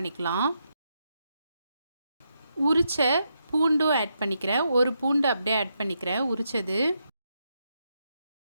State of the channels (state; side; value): inverted; both; correlation -0.82